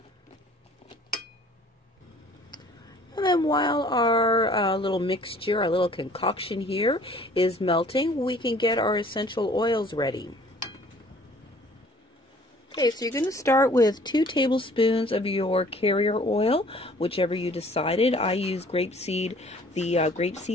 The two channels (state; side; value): normal; both; correlation 0.54